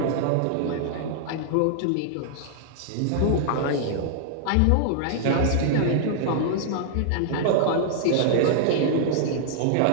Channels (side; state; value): both; different; correlation -0.01